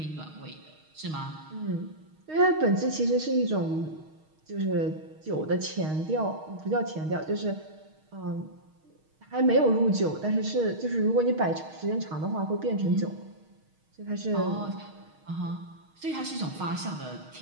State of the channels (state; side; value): late; left; 6.4 ms